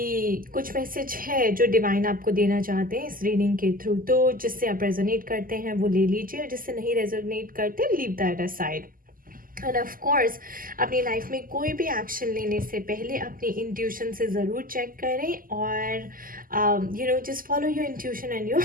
कुछ मैसेज है जो डिवाइन आपको देना चाहते हैं इस रीडिंग के थ्रू. तो जिससे आप रेजोनेट करते हैं वो ले लीजिए, और जिससे नहीं रेजोनेट करते leave that aside. End of course अपनी लाइफ में कोई भी एक्शन लेने से पहले अपनी इंट्यूशन से ज़रूर चेक करें, और just follow your intuition and your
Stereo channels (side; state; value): left; late; 0.41 ms